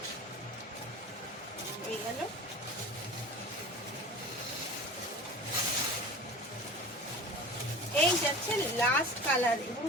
গেল। এই যাচ্ছে লাস্ট কালার, এবং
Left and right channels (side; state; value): both; normal; correlation 0.37